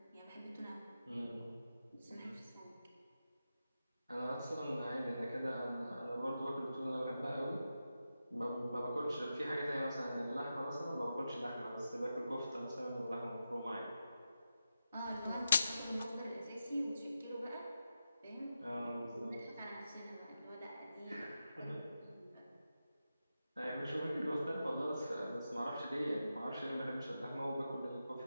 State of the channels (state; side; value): inverted; both; correlation -0.90